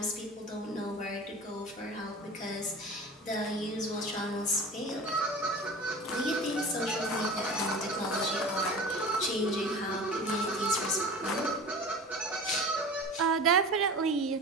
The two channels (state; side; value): normal; both; correlation 0.36